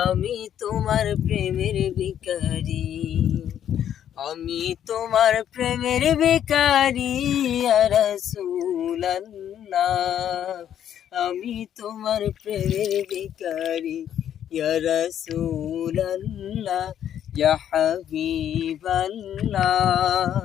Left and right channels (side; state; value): right; quieter; 10.1 dB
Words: আমি তোমার প্রেমের ভিখারি, আমি তোমার প্রেমের ভিখারি ইয়া রাসূলুল্লাহ, আমি তোমার প্রেমের ভিখারি ইয়া রাসূলুল্লাহ, ইয়া হাবিবাল্লাহ,